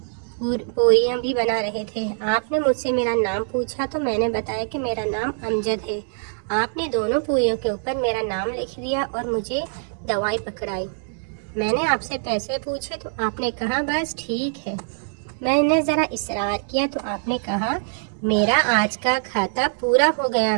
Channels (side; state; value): left; silent; digital silence